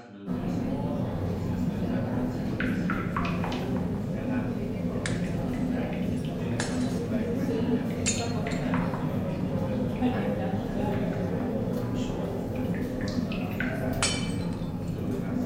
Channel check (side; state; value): both; identical; correlation 1.00